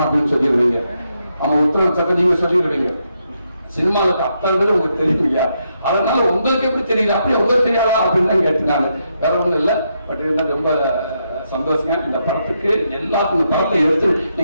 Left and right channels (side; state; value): both; inverted; correlation -0.80